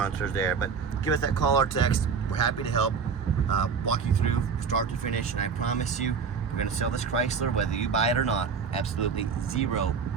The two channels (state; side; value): quieter; left; 5.9 dB